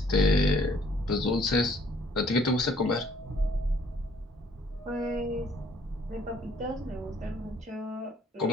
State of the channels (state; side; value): normal; both; correlation 0.62